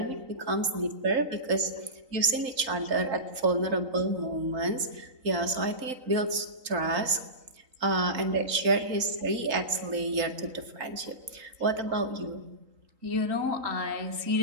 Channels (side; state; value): left; late; 3.8 ms